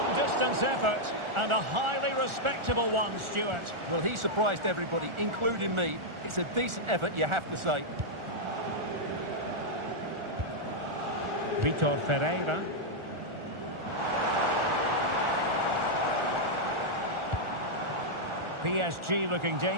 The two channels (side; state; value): left; late; 1.4 ms